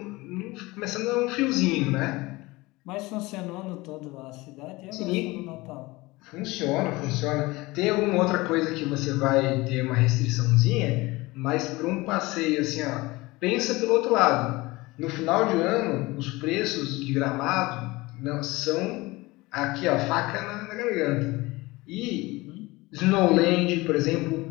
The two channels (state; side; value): quieter; right; 21.6 dB